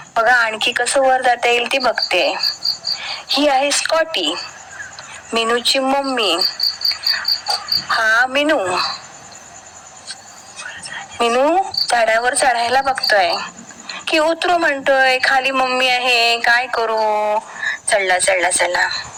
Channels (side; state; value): both; identical; correlation 1.00